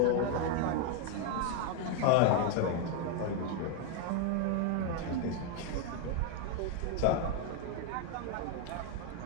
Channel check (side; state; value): both; different; correlation 0.01